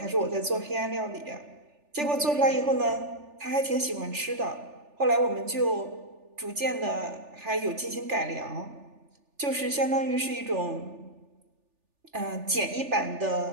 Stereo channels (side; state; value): left; late; 3.4 ms